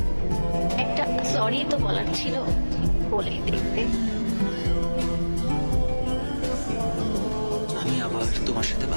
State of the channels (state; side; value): inverted; both; correlation -1.00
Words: একটা সরি তো বলার ছিল, বলেই দেখতে। আমি আবার তোমার সাথে